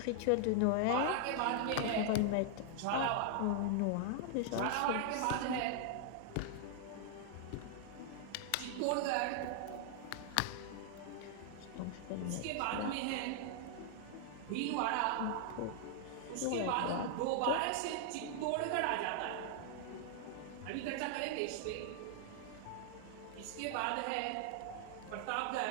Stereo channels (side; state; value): both; different; correlation -0.01